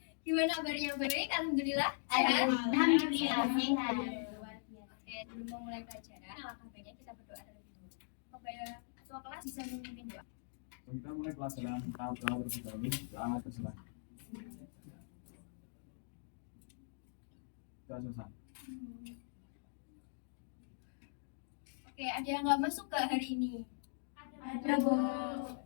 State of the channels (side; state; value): right; silent; digital silence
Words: Gimana kabarnya? Baik, alhamdulillah. Alhamdulillah sehat. Oke, sebelum memulai pelajaran, alangkah baiknya kita berdoa terlebih dulu. Kepada ketua kelas bisa memimpin doa. Kita mulai pelajaran tahap terlebih dahulu. Doa terserah. Sudah selesai. Oke, ada yang nggak masuk ke hari ini? Ada, Bu.